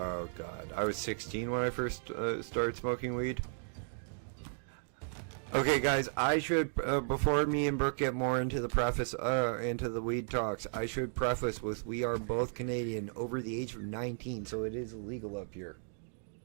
god, I was 16 when I first started smoking weed. Okay guys, I should, before me and Brooke get more into the into the weed talks, I should preface with we are both Canadian over the age of 19, so it is illegal up here.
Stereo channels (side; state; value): left; silent; digital silence